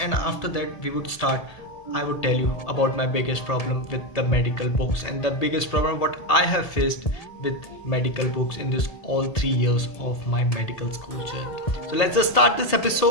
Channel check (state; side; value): late; right; 1.8 ms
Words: after that we would start. I would tell you about my biggest problem with the medical books and the biggest problem what I have faced with medical books in this all 3 years of my medical school journey. So let's just start this